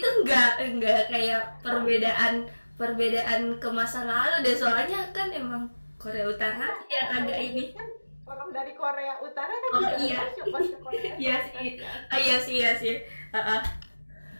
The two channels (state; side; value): inverted; both; correlation -1.00